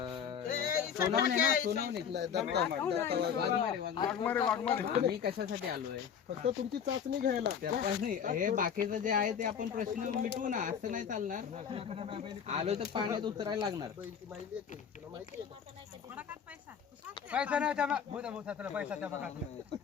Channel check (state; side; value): quieter; right; 7.6 dB